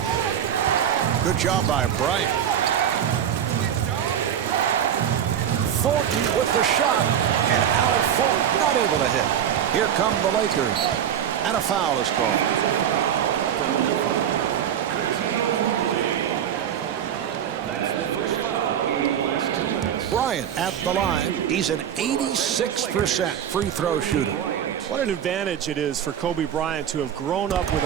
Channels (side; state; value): left; quieter; 9.3 dB